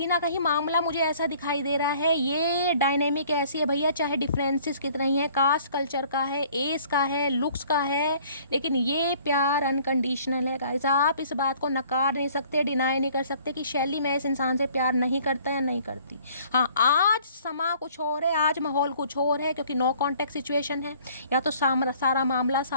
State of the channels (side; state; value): both; inverted; correlation -0.56